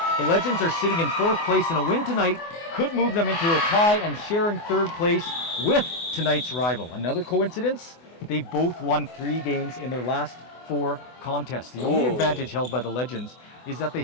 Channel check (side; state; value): right; late; 24 ms